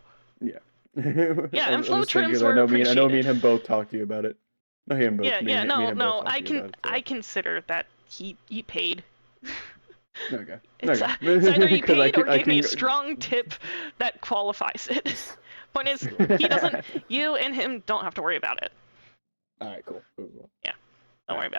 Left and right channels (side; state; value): both; inverted; correlation -1.00